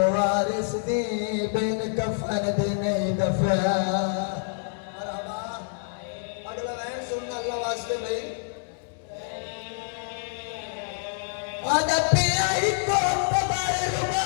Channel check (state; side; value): silent; right; digital silence